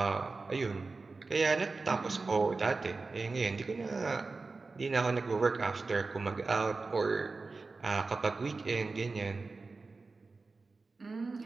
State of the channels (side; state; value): left; quieter; 3.9 dB